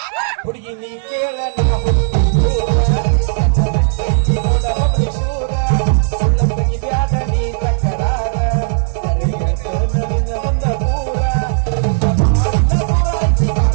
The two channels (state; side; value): silent; left; 69 dB below the other